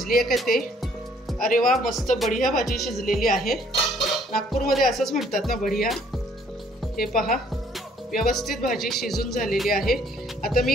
आहे का ते. अरे वा, मस्त बढिया भाजी शिजलेली आहे. नागपूरमध्ये असंच म्हणतात ना, बढिया. हे पहा, व्यवस्थित भाजी शिजून झालेली आहे. आता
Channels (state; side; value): normal; both; correlation 0.62